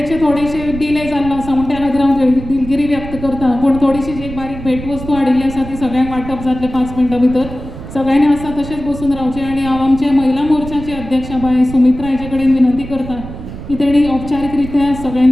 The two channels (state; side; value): noise; right; rumble, 11 dB below the sound